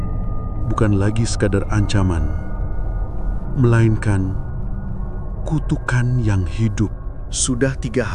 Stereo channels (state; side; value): identical; both; correlation 1.00